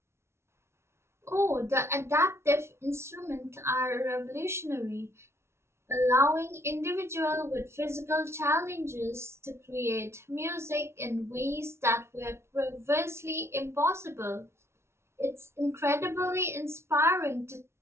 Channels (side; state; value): left; late; 0.13 ms